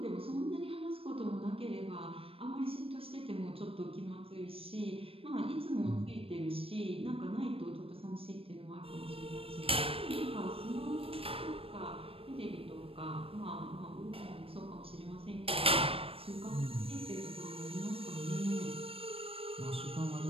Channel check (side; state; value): left; late; 0.28 ms